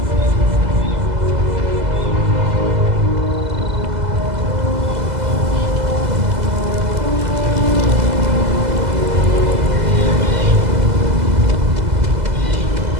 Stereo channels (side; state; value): left; late; 2.0 ms